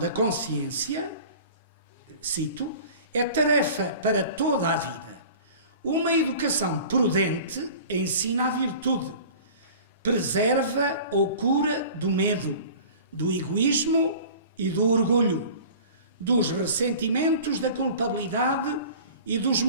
consciência, cito, é tarefa para toda a vida. Uma educação prudente ensina a virtude, preserva ou cura do medo, do egoísmo e do orgulho, dos ressentimentos da culpabilidade e dos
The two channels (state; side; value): inverted; both; correlation -0.42